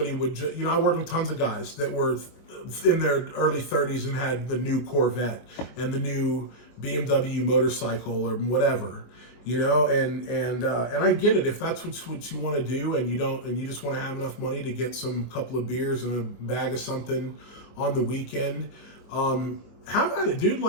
would, I worked with tons of guys that were in their early 30s and had the new Corvette and the new BMW motorcycle or whatever, and I get it. If that's what you want to do and you just want to have enough money to get some couple of beers and a bag of something on the weekend, have at it, dude.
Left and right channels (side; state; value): right; late; 24 ms